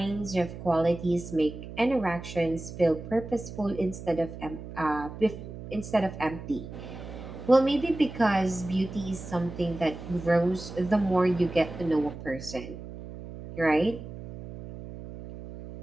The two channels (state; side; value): noise; right; hum, 12 dB below the sound